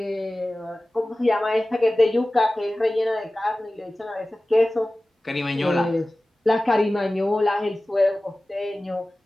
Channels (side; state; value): both; normal; correlation 0.97